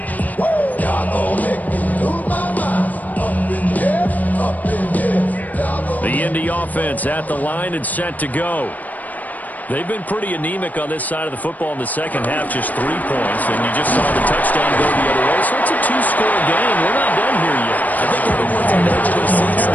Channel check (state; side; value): late; right; 0.079 ms